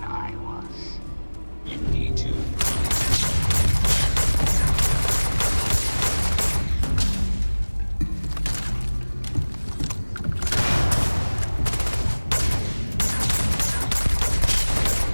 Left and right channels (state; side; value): inverted; both; correlation -1.00